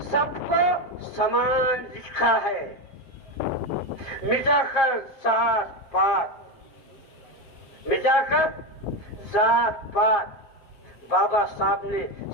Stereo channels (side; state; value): right; late; 7.5 ms